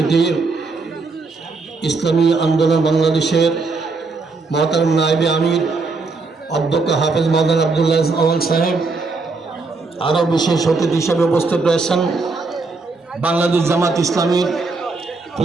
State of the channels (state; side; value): quieter; left; 3.9 dB